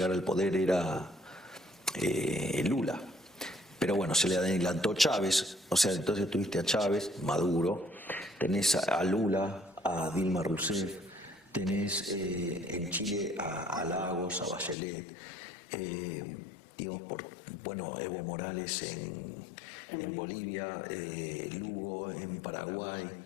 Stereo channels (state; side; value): drops out; right; at 14.8 s